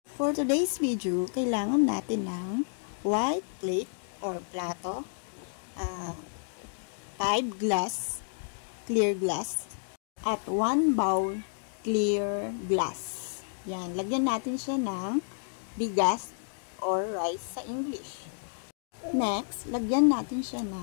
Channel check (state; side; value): silent; right; digital silence